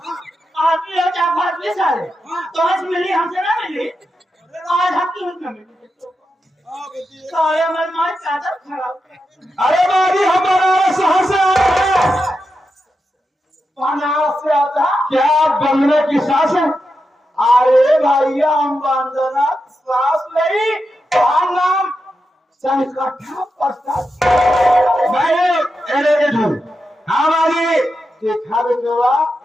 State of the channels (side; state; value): both; normal; correlation 0.88